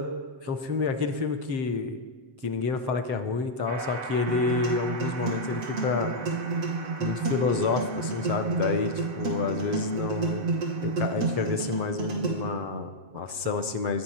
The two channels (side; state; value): left; late; 7.7 ms